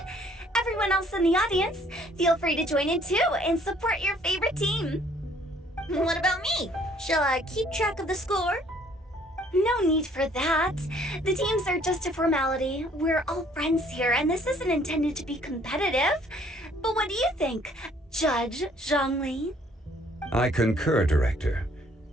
Everyone else in the audience, feel free to join in too and support your favorite team. What about me? Shall I keep track of the score? No need for that. The teams are just a formality. We're all friends here, and this isn't intended to be competitive. But what do you think, Judge Zhongli? I concur, Director.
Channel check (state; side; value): normal; both; correlation 0.61